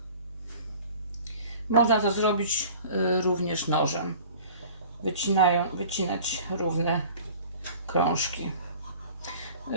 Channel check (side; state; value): both; inverted; correlation -0.46